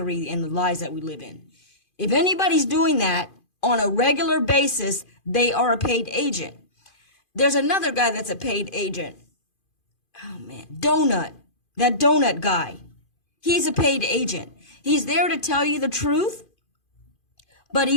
and the lies that we live in. If anybody's doing that on a regular basis, they are a paid agent. There's another guy that's a paid agent. Oh man, that donut guy. He's a paid agent. He's there to tell you the truth, but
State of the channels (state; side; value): late; right; 2.5 ms